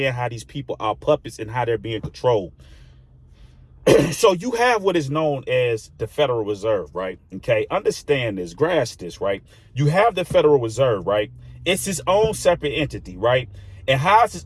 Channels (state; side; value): identical; both; correlation 1.00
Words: how these people are puppets and how they're being controlled. So you have what is known as the Federal Reserve, right? Okay, understand this, grasp this, right? You have the Federal Reserve, right? It's its own separate entity, right? And how it's its